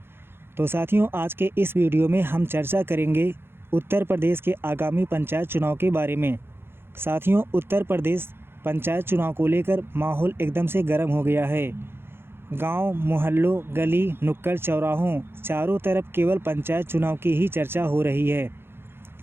तो साथियों, आज के इस वीडियो में हम चर्चा करेंगे उत्तर प्रदेश के आगामी पंचायत चुनाव के बारे में। साथियों, उत्तर प्रदेश पंचायत चुनाव को लेकर माहौल एकदम से गर्म हो गया है। गांव, मोहल्लों, गली, नुक्कड़, चौराहों चारों तरफ केवल पंचायत चुनाव की ही चर्चा हो रही है।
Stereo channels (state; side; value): late; left; 0.11 ms